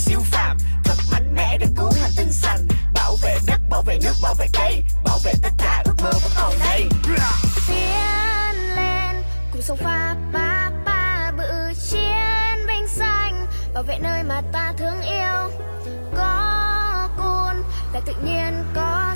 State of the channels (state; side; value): inverted; both; correlation -1.00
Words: phàm, thật mạnh mẽ để cứu hành tinh xanh, bảo vệ đất, bảo vệ nước, bảo vệ cây, bảo vệ tất cả ước mơ vẫn còn đây. Tiến lên cùng sông pha ba ba bự chiến binh xanh, bảo vệ nơi mà ta thương yêu. Có cun là tự nhiên có